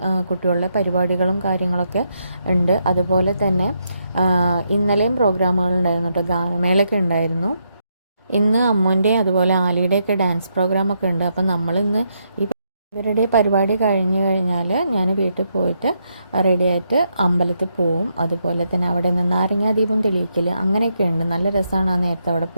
കുട്ടികളുടെ പരിപാടികളും കാര്യങ്ങളൊക്കെ ഉണ്ട്. അതുപോലെ തന്നെ ഇന്നലെയും പ്രോഗ്രാമുകളുണ്ടായിരുന്നു കേട്ടോ, ഗാനമേളയൊക്കെ ഉണ്ടായിരുന്നു. ഇന്ന് അമ്മുവിൻ്റെയും അതുപോലെ ആലിയുടെയൊക്കെ ഡാൻസ് പ്രോഗ്രാമൊക്കെ ഉണ്ട്. അപ്പം നമ്മളിന്ന് ഇവരുടെ പരിപാടി കഴിഞ്ഞ് കഴിഞ്ഞാൽ ഞാൻ വീട്ടിൽ പോയിട്ട് റെഡിയായിട്ട് അമ്പലത്തിൽ പോവും. അതുപോലെ തന്നെ അവിടെ നിന്ന് നാരങ്ങാദീപം തെളിയിക്കൽ അങ്ങനെയൊക്കെ ഉണ്ട്. നല്ല രസമാണ് ആ നേരത്തെ അവിടെ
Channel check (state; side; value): inverted; both; correlation -0.79